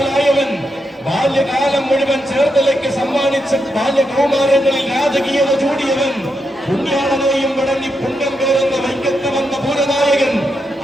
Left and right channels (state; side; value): normal; both; correlation 0.83